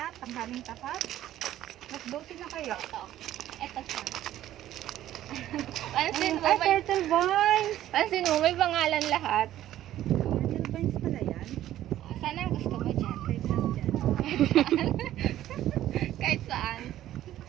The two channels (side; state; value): left; quieter; 13.1 dB